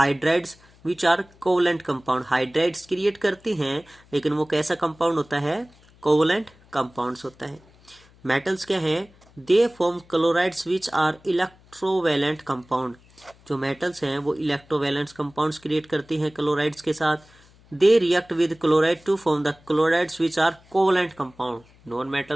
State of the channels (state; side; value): noise; left; hum, 28 dB below the sound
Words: which are covalent compound. Hydrides create करती हैं लेकिन वो कैसा कंपाउंड होता है, कोवलेंट कंपाउंड्स होता है। मेटल्स क्या है, they form chlorides which are electrovalent compound. जो मेटल्स हैं वो इलेक्ट्रोवैलेंट कंपाउंड्स क्रिएट करती हैं क्लोराइड्स के साथ। They react with chloride to form the chlorides which are covalent compound. Non